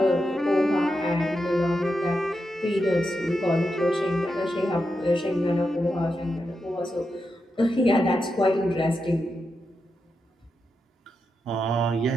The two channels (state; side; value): normal; both; correlation 0.87